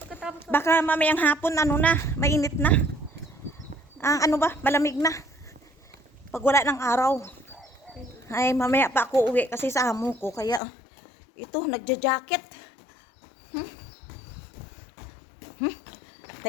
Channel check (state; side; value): drops out; right; at 10.6 s